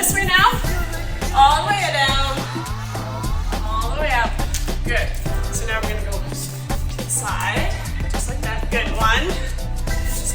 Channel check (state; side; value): identical; both; correlation 1.00